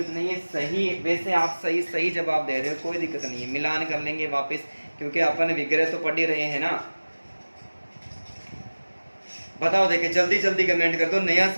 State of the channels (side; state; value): both; inverted; correlation -1.00